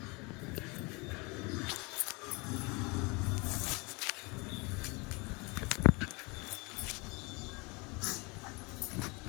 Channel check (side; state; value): right; quieter; 28.1 dB